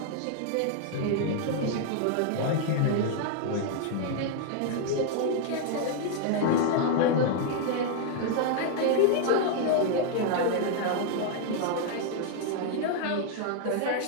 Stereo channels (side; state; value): both; different; correlation 0.00